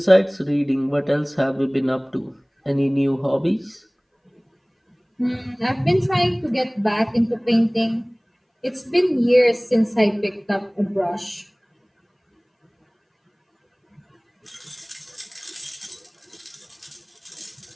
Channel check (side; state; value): both; identical; correlation 1.00